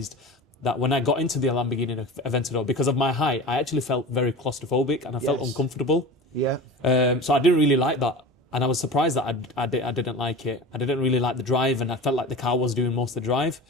that when I got into the Lamborghini Aventador, because of my height, I actually felt very claustrophobic, and I felt uncomfortable. Yeah. So I didn't really like that. And I was surprised that I didn't like it. I didn't really like the drive, and I felt like the car was doing most of the drive.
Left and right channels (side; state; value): both; normal; correlation 0.33